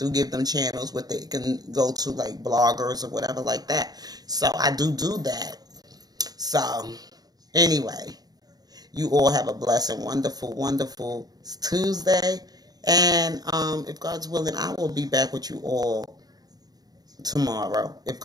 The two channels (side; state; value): left; late; 0.19 ms